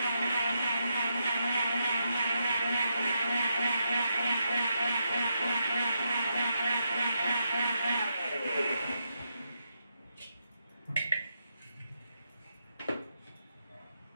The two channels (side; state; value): both; inverted; correlation -0.82